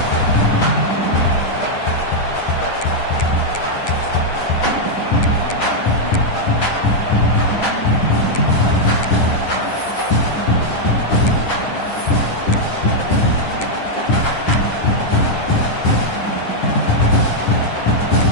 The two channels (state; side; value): late; right; 9.9 ms